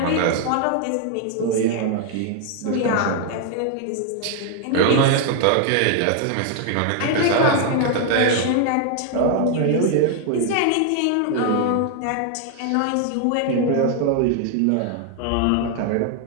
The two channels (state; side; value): different; both; correlation 0.00